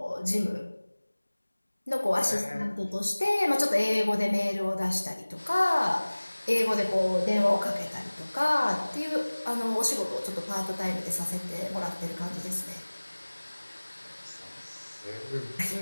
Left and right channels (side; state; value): both; inverted; correlation -1.00